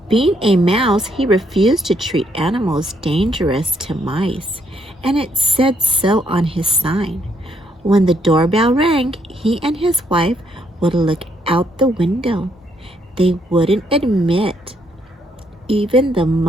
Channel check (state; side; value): normal; both; correlation 0.72